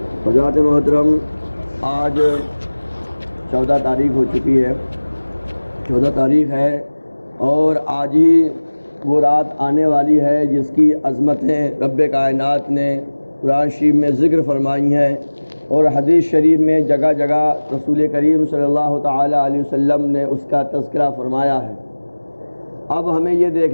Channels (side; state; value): both; inverted; correlation -1.00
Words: حضرات محترم، آج 14 تاریخ ہو چکی ہے، 14 تاریخ ہے، اور آج ہی وہ رات آنے والی ہے جس کی عظمتیں رب کائنات نے قرآن شریف میں ذکر فرمائی ہیں، اور حدیث شریف میں جگہ جگہ رسول کریم صلی اللہ تعالی علیہ وسلم نے اس کا تذکرہ فرمایا ہے۔ اب ہمیں یہ